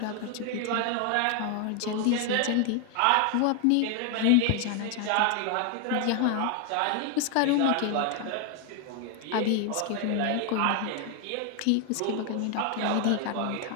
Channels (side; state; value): both; different; correlation 0.01